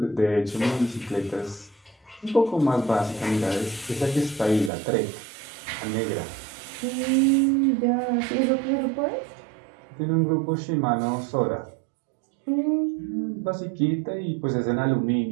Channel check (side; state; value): left; drops out; at 4.7 s